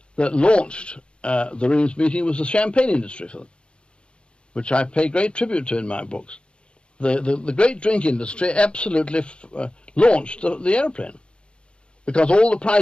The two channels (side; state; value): right; late; 0.056 ms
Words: that launched the Reims meeting was the champagne industry for them, which I pay great tribute to in my books. The great drink industry absolutely launched the aeroplane, because all the